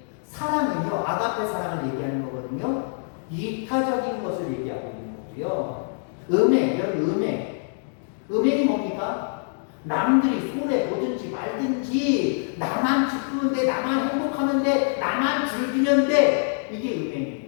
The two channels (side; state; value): right; silent; 62 dB below the other